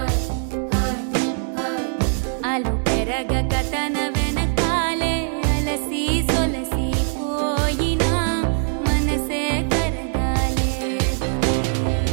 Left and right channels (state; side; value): silent; left; 64 dB below the other